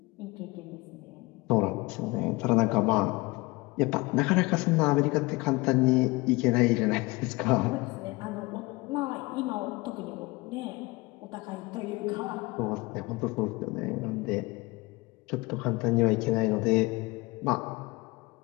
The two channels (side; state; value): right; quieter; 23.7 dB